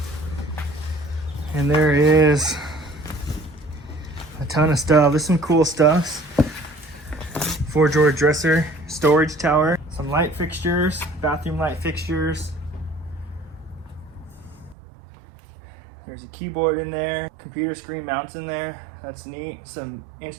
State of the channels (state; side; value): drops out; left; at 14.8 s